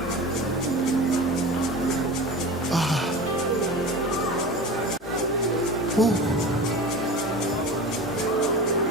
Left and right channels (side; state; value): both; normal; correlation 0.32